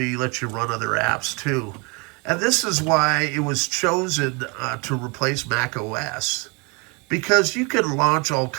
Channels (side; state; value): left; quieter; 30.1 dB